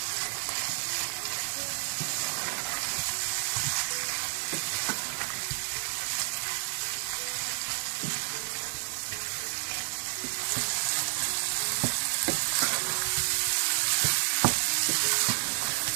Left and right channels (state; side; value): silent; left; digital silence